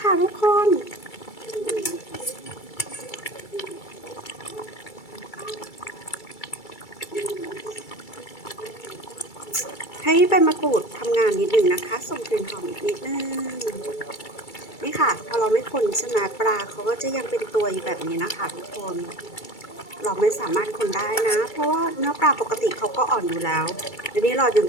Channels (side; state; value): right; late; 2.3 ms